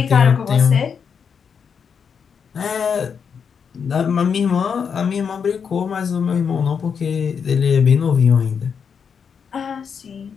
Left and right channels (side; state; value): right; quieter; 6.6 dB